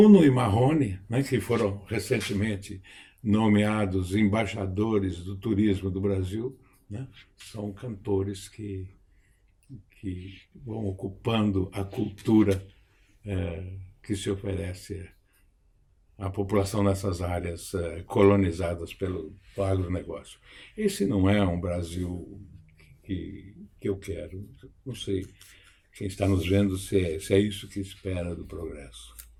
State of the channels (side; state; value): both; identical; correlation 1.00